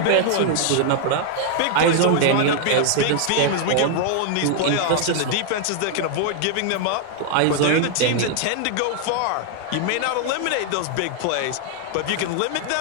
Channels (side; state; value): both; different; correlation 0.00